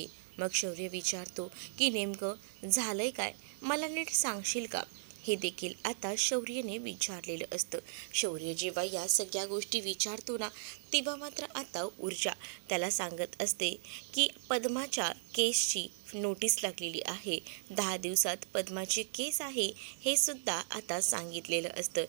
मग शौर्य विचारतो की नेमकं झालंय काय, मला नीट सांगशील का? हे देखील आता शौर्यने विचारलेलं असतं. शौर्य जेव्हा या सगळ्या गोष्टी विचारतो ना, तेव्हा मात्र आता ऊर्जा त्याला सांगत असते की पद्माच्या केसची नोटीस लागलेली आहे. 10 दिवसात पद्माची केस आहे हे सुद्धा आता सांगितलेलं असतं.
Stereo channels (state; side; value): silent; left; digital silence